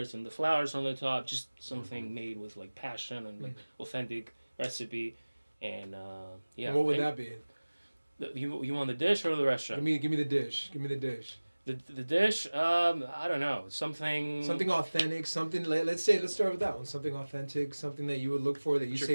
and the flowers on the top. Just something made with like passion and like authentic recipe. And yeah. And what would And that be? you want the dish or the restaurant? Give me the dish. Give me the dish. The dish, I don't know, something Something authentic. Something. Let's start with that one. Something authentic. Something that you would look for. That you What's your say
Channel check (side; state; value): both; inverted; correlation -1.00